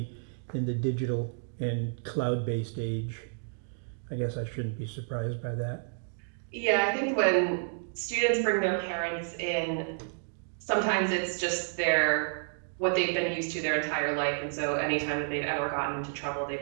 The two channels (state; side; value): silent; left; digital silence